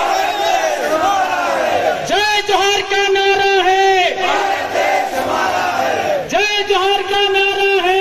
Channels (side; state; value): both; identical; correlation 1.00